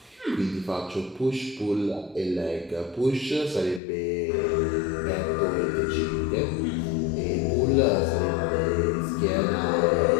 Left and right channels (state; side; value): drops out; right; at 3.8 s